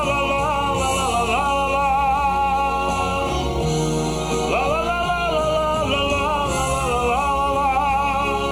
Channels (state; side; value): identical; both; correlation 1.00